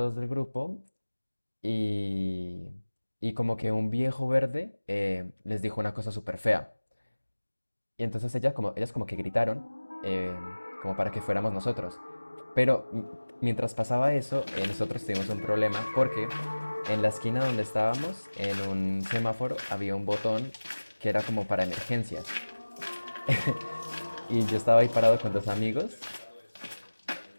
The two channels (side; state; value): both; inverted; correlation -1.00